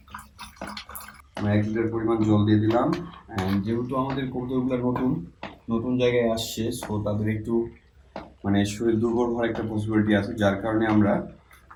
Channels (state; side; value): identical; both; correlation 1.00